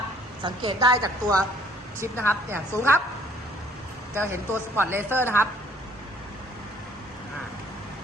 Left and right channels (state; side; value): normal; both; correlation 0.60